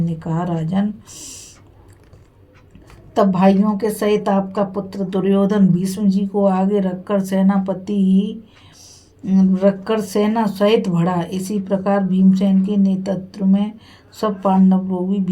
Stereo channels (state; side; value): identical; both; correlation 1.00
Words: कहा, राजन, तब भाइयों के सहित आपका पुत्र दुर्योधन भीष्म जी को आगे रखकर सेना सहित बढ़ा। इसी प्रकार भीमसेन के नेतृत्व में सब पांडव लोग भी